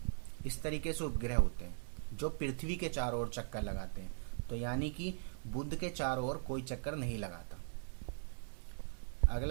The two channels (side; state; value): left; silent; 51 dB below the other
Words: इस तरीके से उपग्रह होते हैं जो पृथ्वी के चारों ओर चक्कर लगाते हैं। तो यानी कि बुध के चारों ओर कोई चक्कर नहीं लगाता।